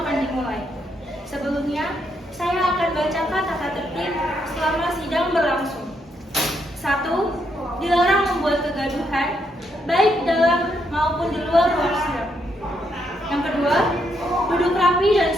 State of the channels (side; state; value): both; normal; correlation 0.77